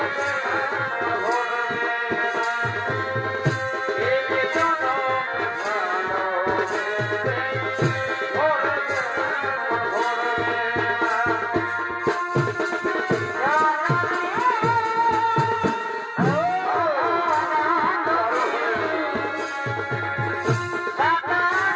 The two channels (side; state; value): both; identical; correlation 1.00